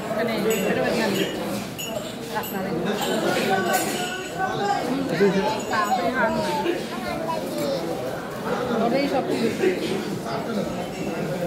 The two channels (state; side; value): identical; both; correlation 1.00